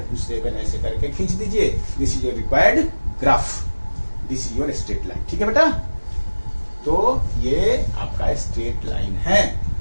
7 ऐसे करके खींच दीजिए। This is your required graph, this is your straight line. ठीक है बेटा, तो ये आपका स्ट्रेट लाइन है,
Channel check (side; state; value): both; inverted; correlation -1.00